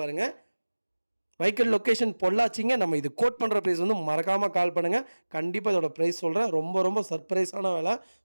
பாருங்கள். வெஹிக்கிள் லொக்கேஷன் பொள்ளாச்சிங்க. நம்ம இது கோட் பண்ணுற ப்ரைஸ் வந்து மறக்காமல் கால் பண்ணுங்கள். கண்டிப்பாக இதோட ப்ரைஸ் சொல்கிறேன். ரொம்ப ரொம்ப சர்ப்ரைஸான வேலை.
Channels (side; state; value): both; inverted; correlation -1.00